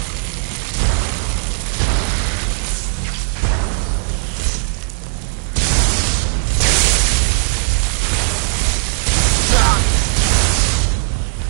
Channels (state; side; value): silent; left; 67 dB below the other